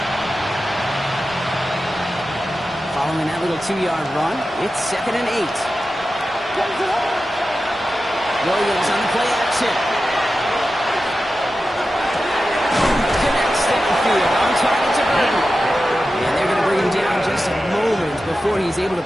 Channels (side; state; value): both; normal; correlation 0.92